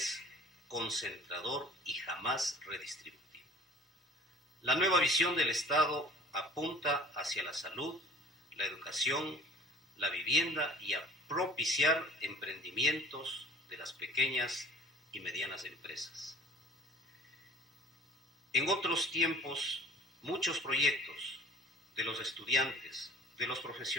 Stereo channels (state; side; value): normal; both; correlation 0.47